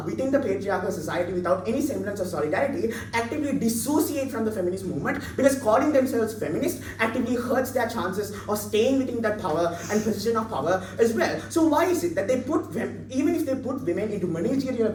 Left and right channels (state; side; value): identical; both; correlation 1.00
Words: within the patriarchal society without any semblance of solidarity actively dissociate from the feminist movement because calling themselves feminist actively hurts their chances of staying within that power and position of power as well. So why is it that they put even if they put women into managerial